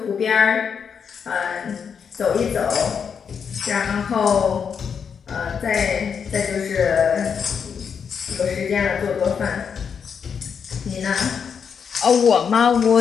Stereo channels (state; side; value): quieter; right; 6.8 dB